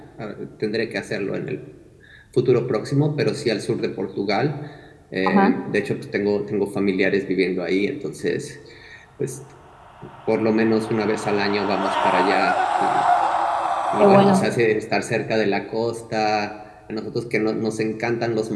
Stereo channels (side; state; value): both; identical; correlation 1.00